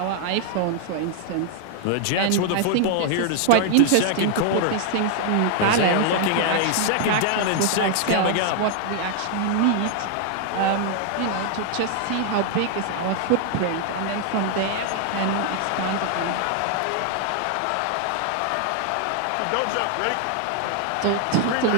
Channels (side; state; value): both; different; correlation 0.00